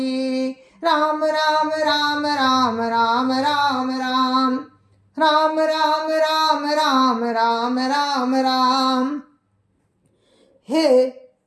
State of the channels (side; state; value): both; identical; correlation 1.00